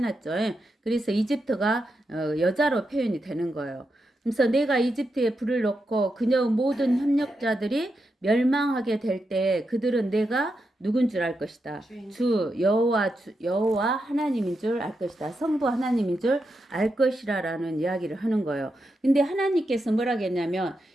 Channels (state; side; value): normal; both; correlation 0.86